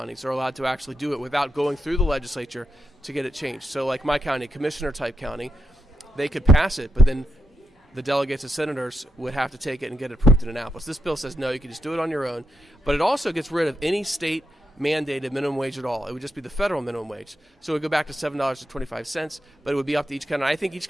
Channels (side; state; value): both; normal; correlation 0.84